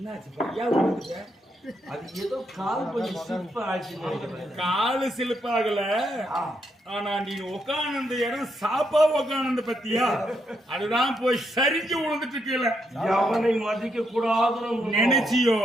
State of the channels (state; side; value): normal; both; correlation 0.79